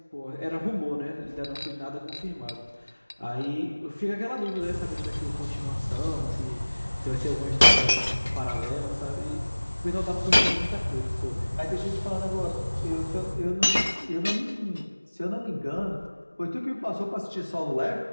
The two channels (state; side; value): inverted; both; correlation -1.00